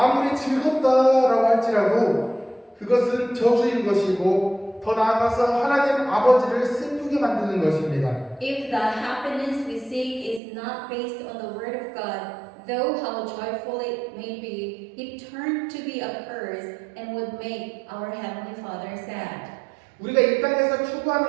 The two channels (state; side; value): drops out; left; at 10.4 s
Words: 즐겁다라고 할지라도 그것은 저주인 것이고 더 나아가서 하나님 아버지를 슬프게 만드는 것입니다. If the happiness we seek is not based on the word of God, though how joyful it may be, it turned to be a curse and would make our Heavenly Father sad. 우리가 이 땅에서